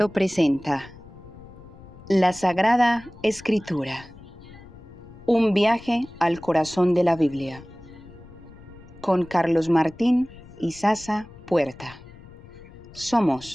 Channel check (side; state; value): left; noise; rumble, 20 dB below the sound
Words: presenta la Sagrada Escritura, un viaje al corazón de la Biblia, con Carlos Martín y Sasa Puerta.